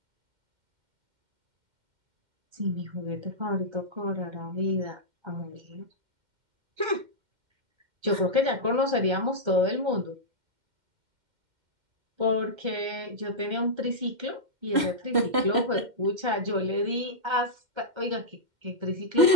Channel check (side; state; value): left; late; 2.1 ms